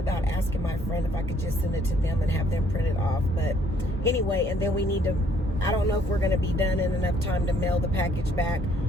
asking my friend if I could just send it to them and have them print it off. But anyway, and then we need to, I don't know if we're going to be done in enough time to mail the package back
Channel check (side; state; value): both; normal; correlation 0.64